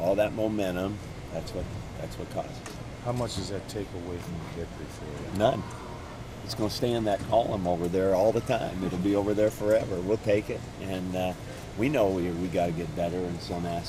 that momentum. That's what caused it. How much does that take away from the victory for you? None. It's going to stay in that column over there all the time. It'll be over there forever. We'll take it, and we know we got to get better in some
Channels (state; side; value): identical; both; correlation 1.00